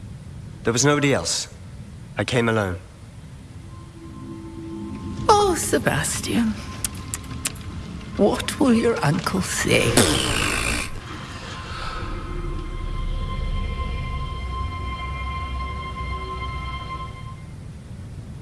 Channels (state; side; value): identical; both; correlation 1.00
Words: There was nobody else. I came alone. Oh, Sebastian. What will your uncle say?